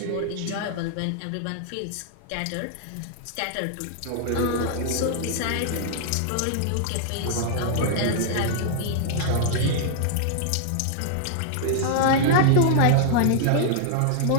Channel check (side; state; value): both; different; correlation -0.01